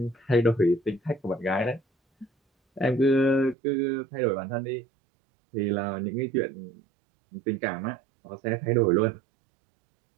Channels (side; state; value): left; drops out; at 3.6 s